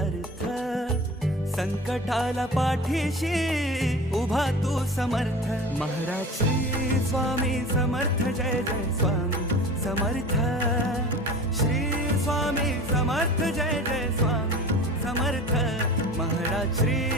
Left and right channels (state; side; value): normal; both; correlation 0.37